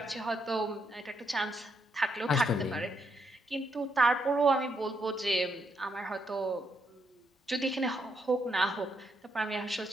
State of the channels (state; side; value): normal; both; correlation 0.78